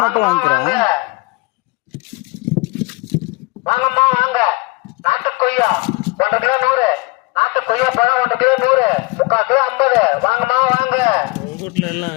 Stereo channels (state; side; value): quieter; right; 24.6 dB